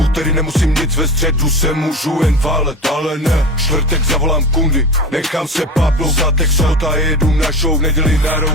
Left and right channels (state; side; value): normal; both; correlation 0.28